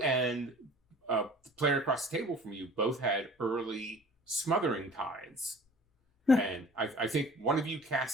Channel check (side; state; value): both; normal; correlation 0.46